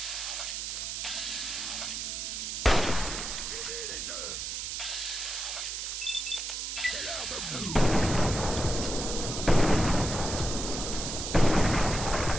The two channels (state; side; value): noise; right; hiss, 4 dB below the sound